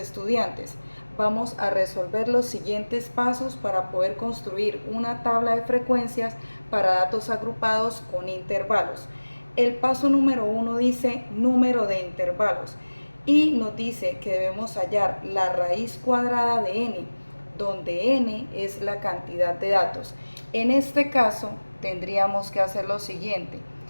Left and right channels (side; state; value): both; inverted; correlation -1.00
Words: Vamos a resolver los siguientes pasos para poder construir una tabla de frecuencias para datos agrupados con intervalos. El paso número 1 dice número de intervalos y nos dice que debemos hallar la raíz cuadrada de n, donde n es la cantidad de datos. En este caso tendríamos que hacer lo siguiente: